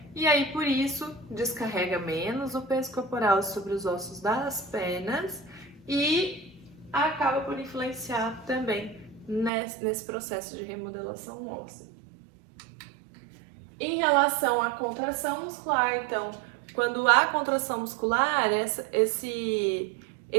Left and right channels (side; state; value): left; drops out; at 9.5 s